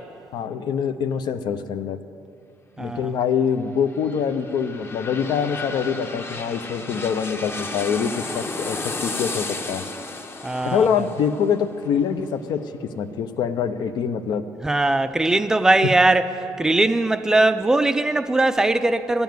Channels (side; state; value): both; normal; correlation 0.72